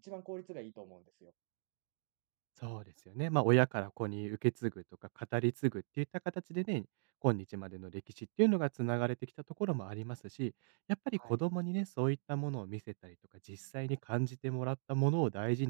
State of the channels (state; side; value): silent; left; digital silence